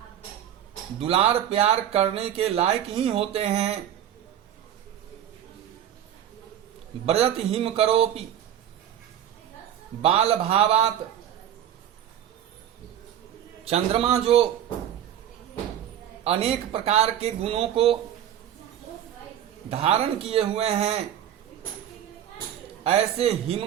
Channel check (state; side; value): quieter; left; 10.5 dB